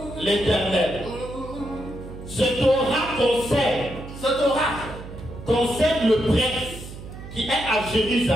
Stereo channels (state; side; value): noise; right; hum, 13 dB below the sound